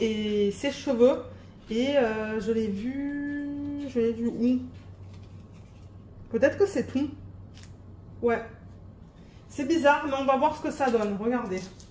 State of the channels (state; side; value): identical; both; correlation 1.00